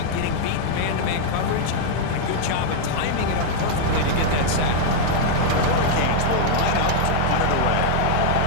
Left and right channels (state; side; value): different; both; correlation -0.01